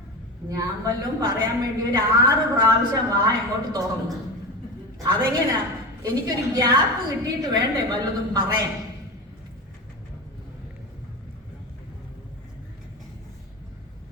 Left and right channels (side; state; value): both; normal; correlation 0.25